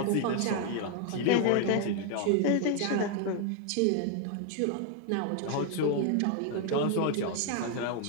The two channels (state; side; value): different; both; correlation 0.01